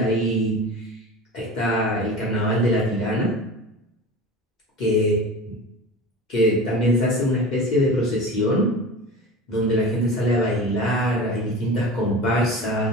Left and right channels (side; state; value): both; normal; correlation 0.33